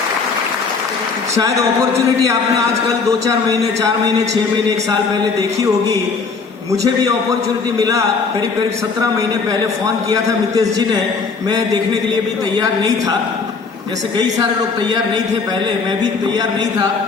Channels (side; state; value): right; quieter; 4.8 dB